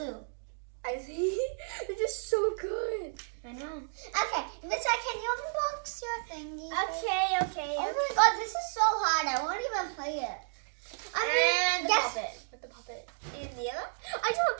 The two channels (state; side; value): silent; left; digital silence